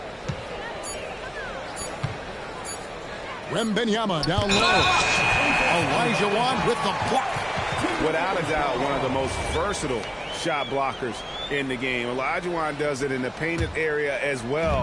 Wembanyama down low. Elijah Wan with the block. Without a doubt, one of the most versatile shot blockers in the game. Elijah Wan does it in the painted area as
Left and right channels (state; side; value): identical; both; correlation 1.00